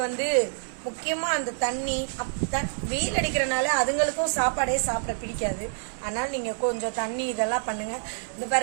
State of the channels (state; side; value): silent; left; 56 dB below the other